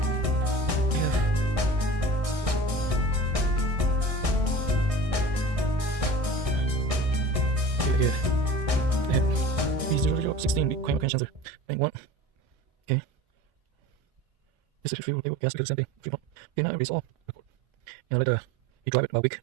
Here, I have B0016 big Kramer sensor. Bank 1. Okay. This is fuel, gas, because the same thing. Fuel pump. Okay, now it's all. And later, you drive it about a week.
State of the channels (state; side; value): late; left; 1.6 ms